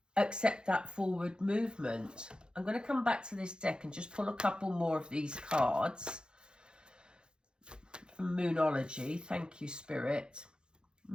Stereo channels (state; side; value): late; left; 0.049 ms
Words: accept that forward movement. I'm going to come back to this deck and just pull a couple more of these cards from Moonology. Thank you, Spirit.